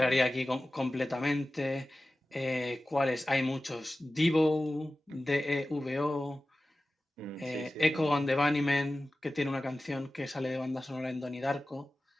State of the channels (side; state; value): both; normal; correlation 0.95